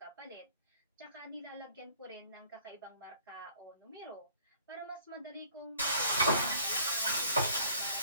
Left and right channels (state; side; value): inverted; both; correlation -0.54